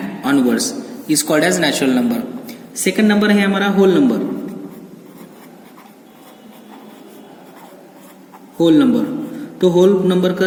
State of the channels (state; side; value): identical; both; correlation 1.00